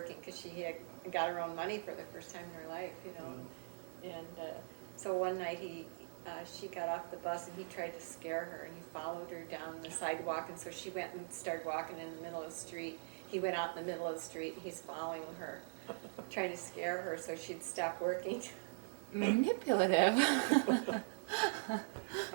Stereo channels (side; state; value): left; silent; digital silence